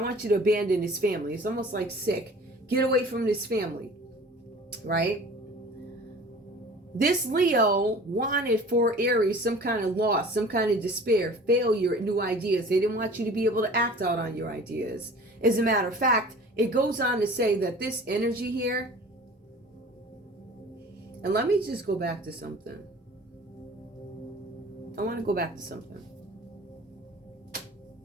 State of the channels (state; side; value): normal; both; correlation 0.44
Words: want you to abandon his family. It's almost like sick. Get away from this family, right? This Leo wanted for Aries some kind of loss, some kind of despair, failure at new ideas. They didn't want you to be able to act out on your ideas. As a matter of fact, it goes on to say that this energy here, and let me just go back to something. I want to go back to something.